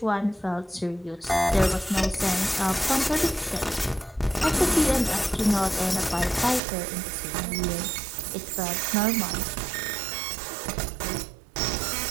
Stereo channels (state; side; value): drops out; left; at 6.6 s